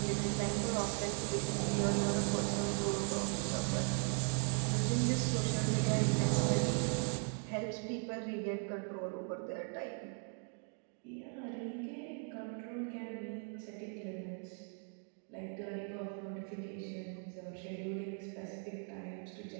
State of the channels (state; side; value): quieter; left; 37.5 dB